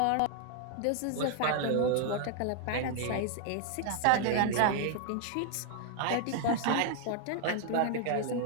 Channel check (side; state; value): both; different; correlation 0.00